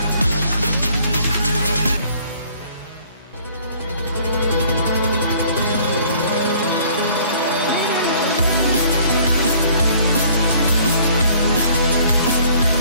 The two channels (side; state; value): both; inverted; correlation -0.57